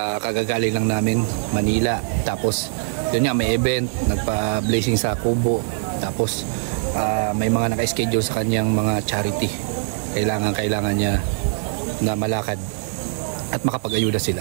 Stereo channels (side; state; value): left; silent; digital silence